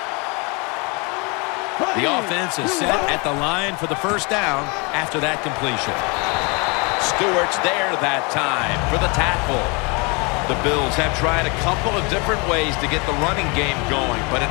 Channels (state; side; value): quieter; right; 30.1 dB